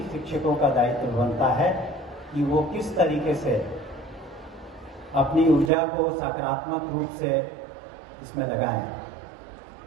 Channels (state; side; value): drops out; left; at 5.7 s